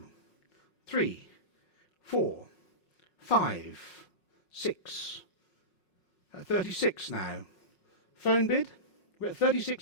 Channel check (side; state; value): right; late; 5.5 ms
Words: 3, 4, 5, 6. 36 now. Phone bid? We're at